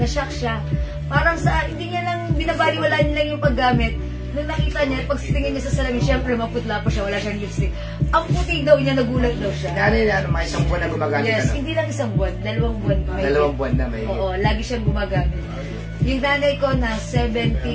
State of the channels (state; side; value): identical; both; correlation 1.00